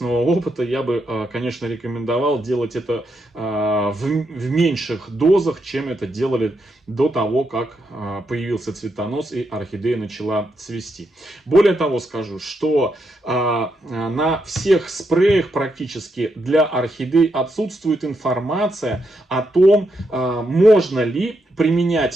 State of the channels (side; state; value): both; normal; correlation 0.81